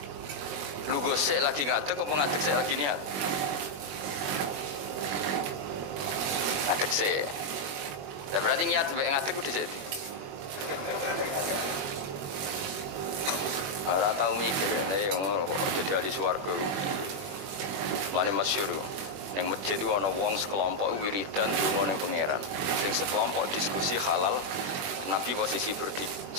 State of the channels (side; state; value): left; late; 21 ms